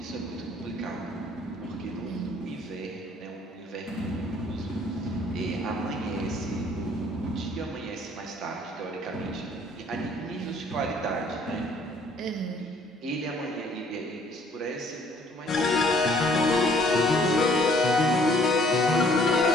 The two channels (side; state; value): both; normal; correlation 0.60